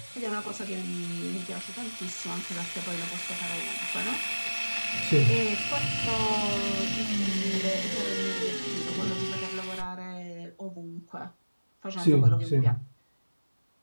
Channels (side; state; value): both; inverted; correlation -1.00